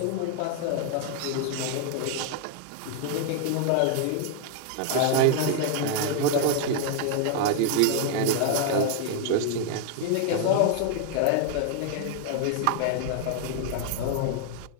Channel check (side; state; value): both; different; correlation 0.00